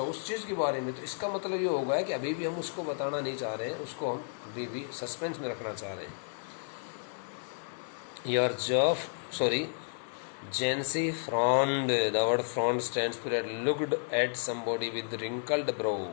चीज़ के बारे में. तो इसका मतलब ये होगा कि अभी भी हम उसको बताना नहीं चाह रहे हैं, उसको हम अभी भी सस्पेंस में रखना चाह रहे हैं. Your job, sorry, Jancy frowned. The word frowned stands for looked at somebody with wrinkled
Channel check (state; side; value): silent; right; digital silence